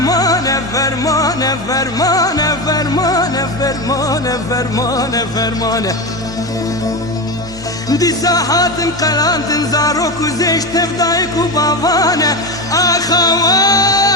فرمانه فرمانه فرمانه فرمانه فرمانه فرمانه دي ساحات قلانت زاروك وزيش تفدايك وبابانه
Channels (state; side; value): normal; both; correlation 0.19